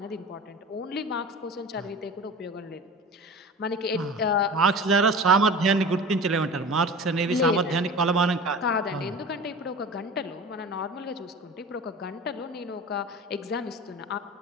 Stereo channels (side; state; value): both; normal; correlation 0.35